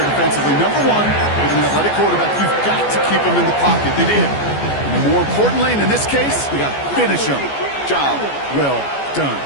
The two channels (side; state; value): right; late; 14 ms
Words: defensively. Number one, with an athletic quarterback, you've got to keep him in the pocket. They did. And more importantly, and in this case, we got to finish him. Job well done.